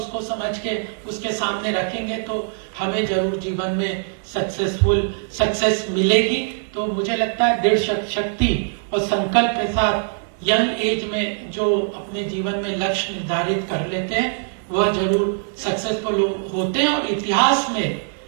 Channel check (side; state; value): left; silent; digital silence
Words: समझ के उसके सामने रखेंगे तो हमें जरूर जीवन में सक्सेस मिलेगी। तो मुझे लगता है दृढ़ शक्ति और संकल्प के साथ यंग एज में जो अपने जीवन में लक्ष्य निर्धारित कर लेते हैं वह जरूर सक्सेसफुल होते हैं। और इतिहास में